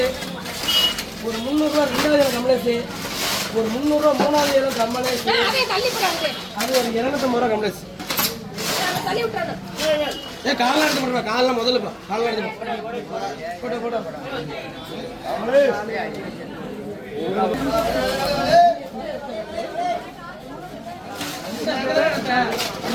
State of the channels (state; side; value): identical; both; correlation 1.00